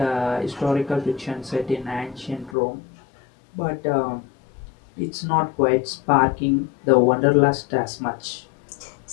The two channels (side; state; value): right; drops out; at 2.6 s